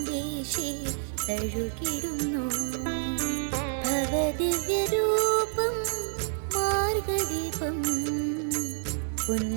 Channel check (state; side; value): silent; left; digital silence